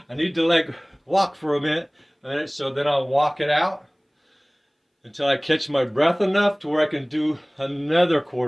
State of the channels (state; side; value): identical; both; correlation 1.00